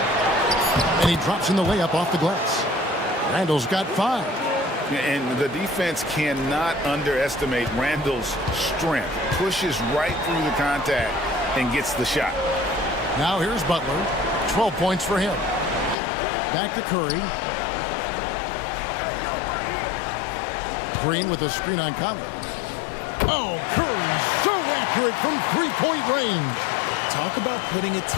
And he drops in the layup off the glass. Randle's got 5. And the defense cannot underestimate Randle's strength. Pushes right through the contact and gets the shot. Now here's Butler. 12 points for him. Back to Curry. Green with a screen on Conley. Oh, Curry so accurate from 3-point range. Talk about putting a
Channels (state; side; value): drops out; right; at 16.0 s